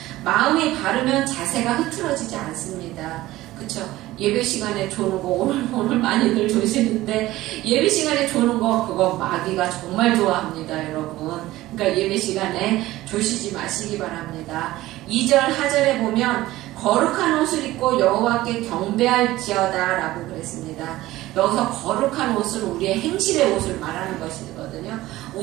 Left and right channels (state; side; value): quieter; left; 16.8 dB